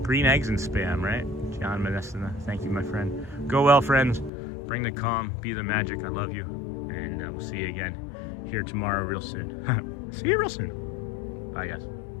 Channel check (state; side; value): drops out; right; at 4.3 s